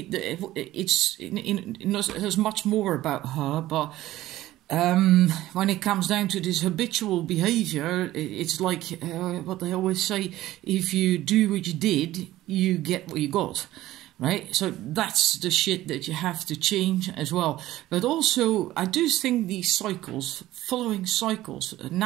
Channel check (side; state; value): left; quieter; 15.5 dB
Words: there's much more about her, but when it comes down to this habitual behavior, it's like what they always say: if you do what you did, you get what you got, right? So that's the shit that you have to change as well. But also, I do think these cycles, following cycles,